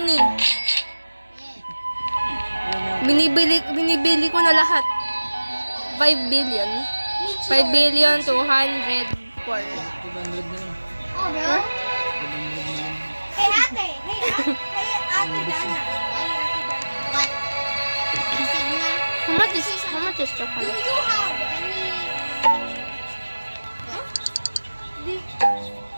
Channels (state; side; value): inverted; both; correlation -1.00